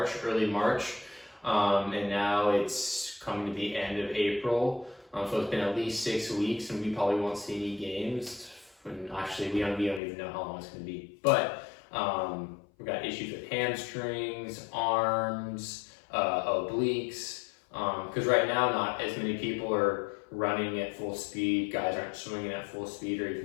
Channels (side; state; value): right; drops out; at 10.0 s